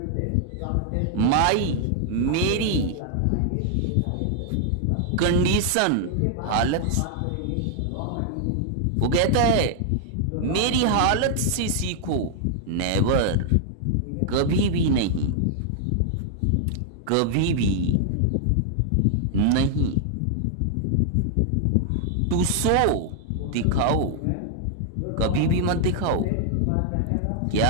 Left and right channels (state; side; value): different; both; correlation -0.01